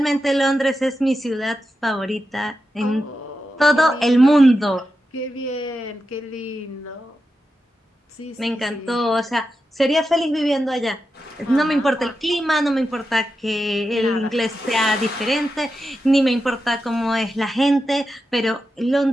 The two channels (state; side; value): normal; both; correlation 0.89